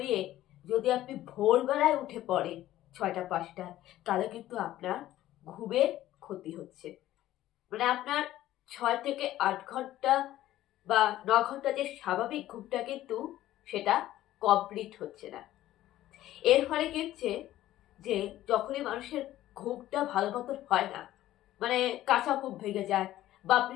যদি আপনি ভোরবেলায় উঠে পড়েন 6টা 5টায়, তাহলে কিন্তু আপনার ঘুমের ক্ষতি হচ্ছে। মানে আপনার 6 থেকে 8 ঘন্টা বা 9 ঘন্টা যে স্বাভাবিক ঘুমটা, কিন্তু সেটা কমপ্লিট হচ্ছে না। এর ফলে কি হচ্ছে যে যখনই মানুষের ঘুমটা ভালো মতন হয় না, মানে কাঁচা ঘুম ভেঙে যায়, বা আপনি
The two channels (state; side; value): quieter; right; 14.2 dB